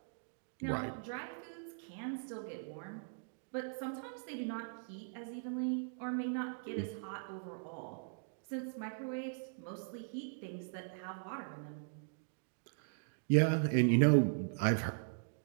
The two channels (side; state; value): left; silent; digital silence